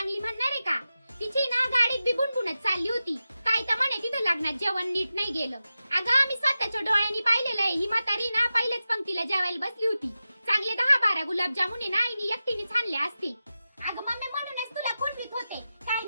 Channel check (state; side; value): inverted; both; correlation -0.93